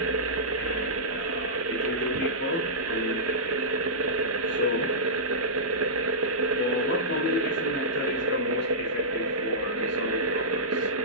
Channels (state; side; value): normal; both; correlation -0.16